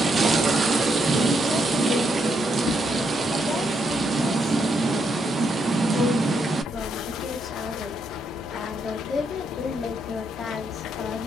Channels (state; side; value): normal; both; correlation 0.78